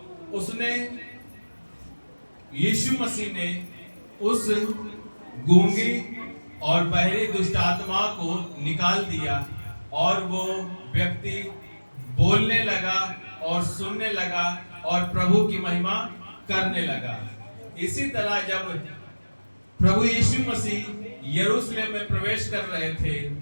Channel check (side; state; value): both; inverted; correlation -1.00